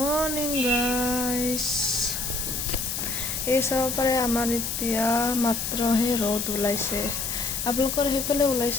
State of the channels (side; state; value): left; noise; hiss, 3 dB below the sound